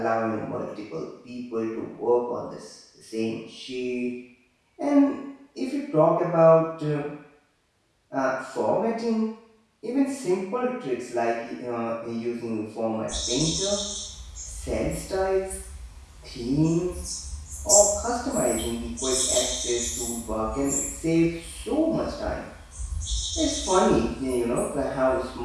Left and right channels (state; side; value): identical; both; correlation 1.00